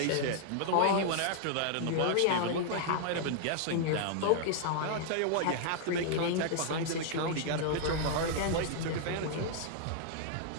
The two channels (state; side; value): different; both; correlation -0.01